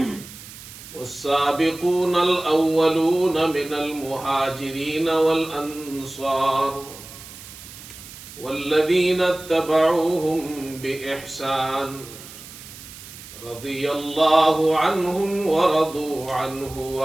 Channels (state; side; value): noise; right; hiss, 16 dB below the sound